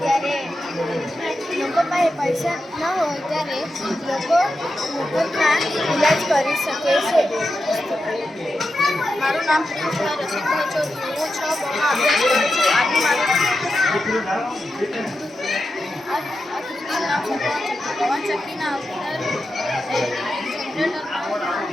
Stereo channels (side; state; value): both; normal; correlation 0.89